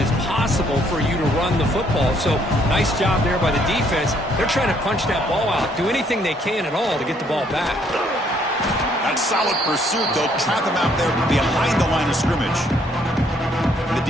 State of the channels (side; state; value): both; normal; correlation 0.67